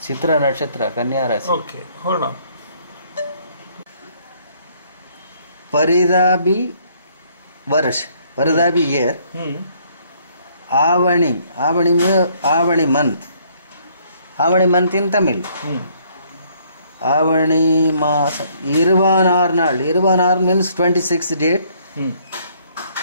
சித்ர நட்சத்திர கன்னியா ராசி. Okay, hold on. Paridabi Varsh, Paridabi year. Avani month. Avani month in Tamil. Avani Masa. Irvanarnal. Irvanar means 26th date.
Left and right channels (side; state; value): both; inverted; correlation -0.64